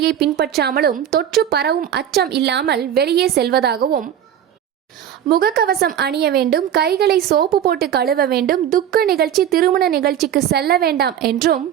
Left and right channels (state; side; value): quieter; left; 9.9 dB